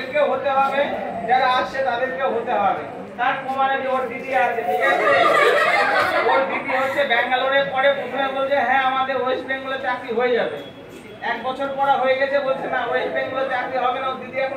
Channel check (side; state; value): both; identical; correlation 1.00